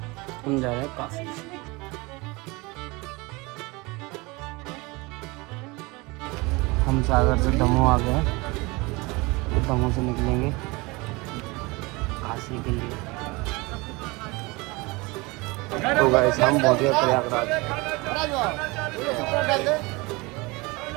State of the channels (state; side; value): quieter; left; 24.7 dB